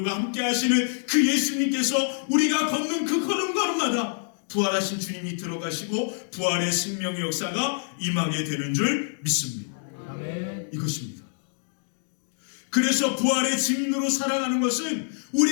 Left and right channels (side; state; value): right; silent; digital silence